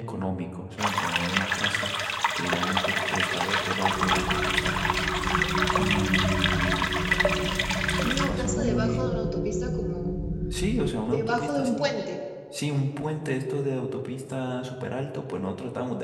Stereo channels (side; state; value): both; identical; correlation 1.00